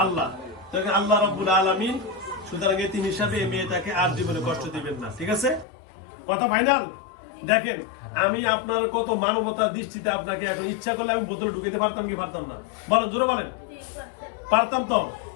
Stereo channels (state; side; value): drops out; right; at 5.7 s